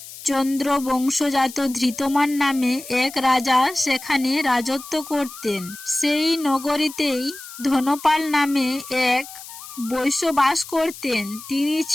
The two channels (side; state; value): left; noise; hiss, 15 dB below the sound